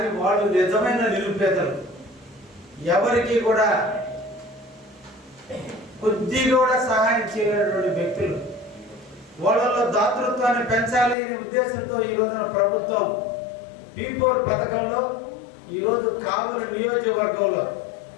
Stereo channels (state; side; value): drops out; right; at 11.2 s